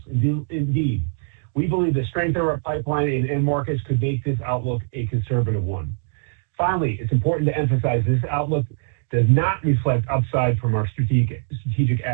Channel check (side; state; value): left; silent; digital silence